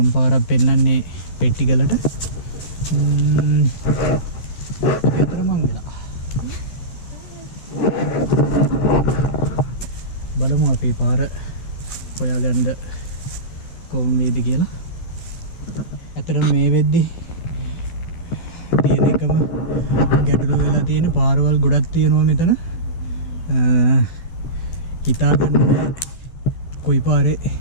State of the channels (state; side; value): late; right; 12 ms